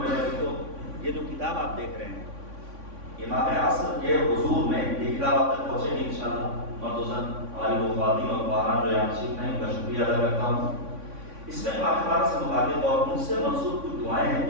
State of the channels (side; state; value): left; late; 3.6 ms